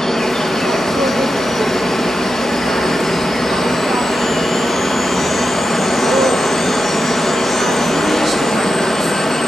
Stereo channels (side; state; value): left; noise; hum, 23 dB below the sound